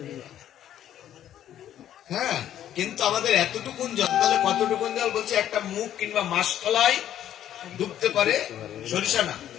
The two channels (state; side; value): quieter; right; 11.2 dB